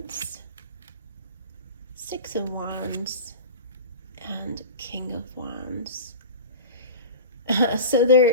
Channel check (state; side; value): inverted; both; correlation -0.32